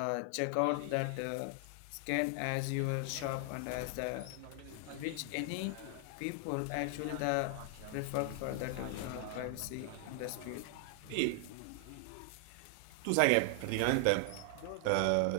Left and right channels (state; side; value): different; both; correlation 0.00